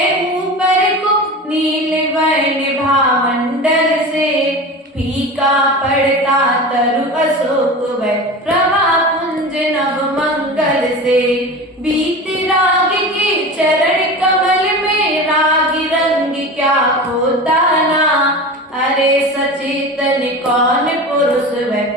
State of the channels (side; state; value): both; normal; correlation 0.31